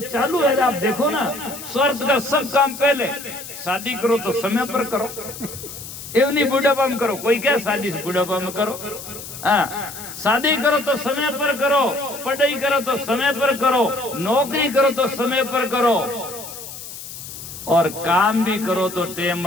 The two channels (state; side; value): noise; left; hiss, 12 dB below the sound